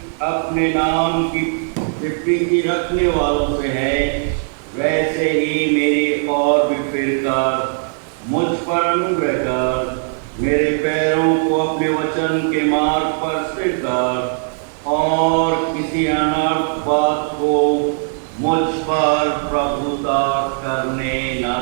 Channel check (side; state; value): left; silent; digital silence